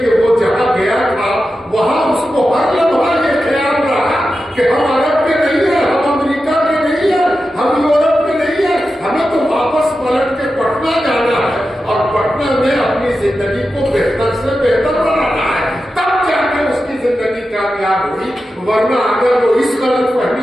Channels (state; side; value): normal; both; correlation 0.91